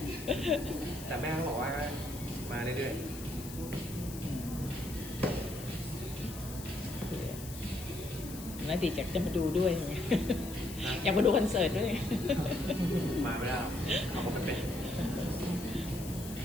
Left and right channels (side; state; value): left; noise; hiss, 13 dB below the sound